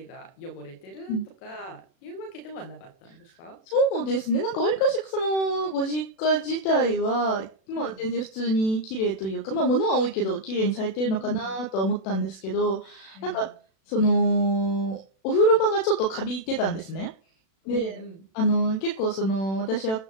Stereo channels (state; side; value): late; right; 36 ms